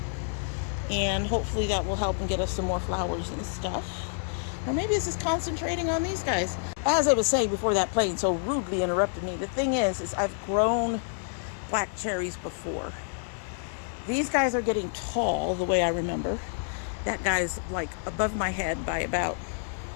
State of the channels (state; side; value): silent; right; digital silence